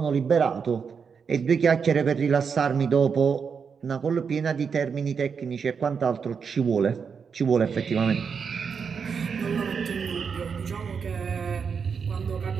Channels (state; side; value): quieter; left; 6.1 dB